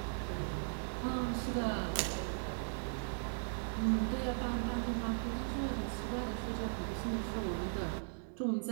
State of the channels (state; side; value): silent; left; digital silence